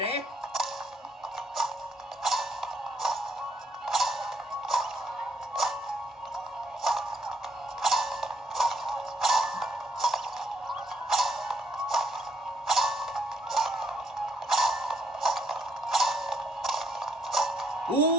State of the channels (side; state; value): both; normal; correlation 0.73